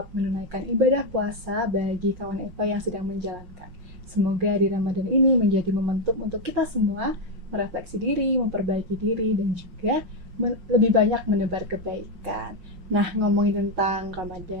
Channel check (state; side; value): late; left; 5.5 ms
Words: menunaikan ibadah puasa bagi kawan FH yang sedang menjalankan. Semoga di Ramadan ini menjadi momentum untuk kita semua merefleksi diri, memperbaiki diri, dan juga lebih banyak menebar kebaikan. Nah, ngomongin tentang